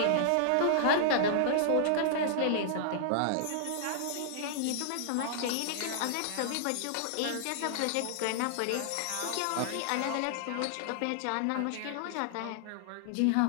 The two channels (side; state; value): both; different; correlation -0.01